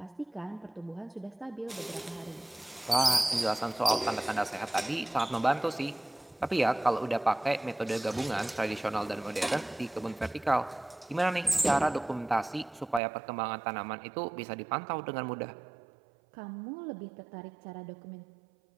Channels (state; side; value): drops out; left; at 13.0 s